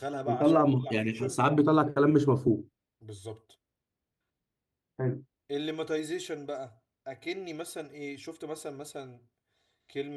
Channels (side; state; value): both; identical; correlation 1.00